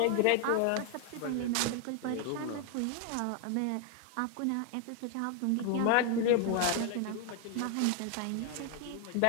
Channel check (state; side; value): different; both; correlation 0.00